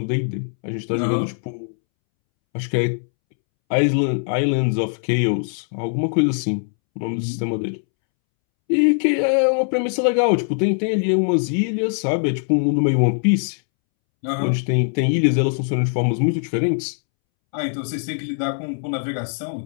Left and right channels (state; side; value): silent; right; 65 dB below the other